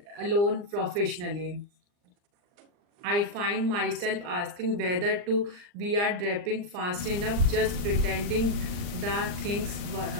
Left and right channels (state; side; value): late; left; 39 ms